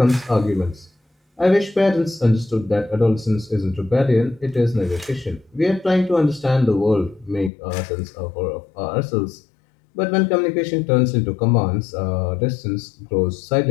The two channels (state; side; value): drops out; right; at 7.5 s